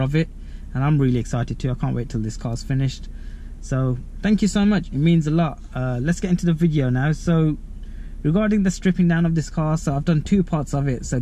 of it, and I'm really excited too. I can't wait till this car's finished. So thank you so much, it means a lot. Let's get into the video now. So regarding the stripping down of this car, so I've done two parts of it. So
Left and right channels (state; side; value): identical; both; correlation 1.00